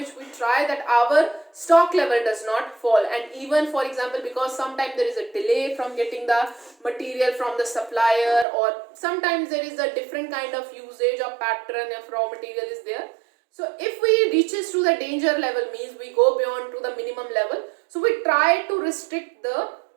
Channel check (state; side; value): drops out; left; at 8.5 s